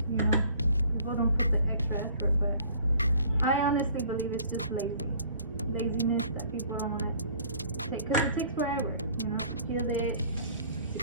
you know, people don't put the extra effort, but I honestly believe it's just laziness that people don't want to take, because it takes forever, you know, to peel it,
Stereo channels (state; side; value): inverted; both; correlation -0.53